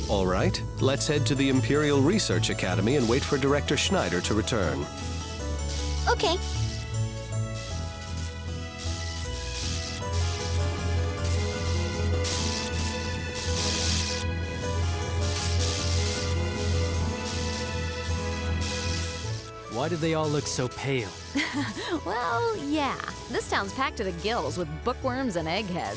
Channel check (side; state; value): both; identical; correlation 1.00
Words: All right, let's head to the Imperial Research Academy and wait for Director Schneider to return. Okay. Why do they all look so pale? Well, yeah. This town's packed to the gills with bookworms and